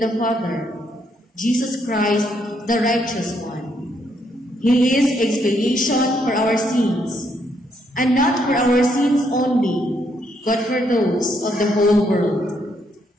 the Father, Jesus Christ, the righteous one. He is expiation for our sins, and not for our sins only, but for those of the whole world.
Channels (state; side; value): normal; both; correlation 0.74